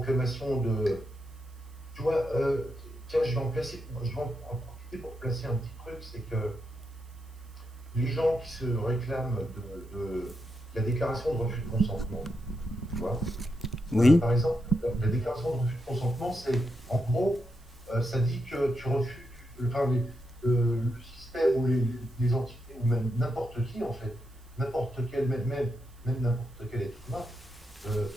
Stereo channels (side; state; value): right; noise; hiss, 29 dB below the sound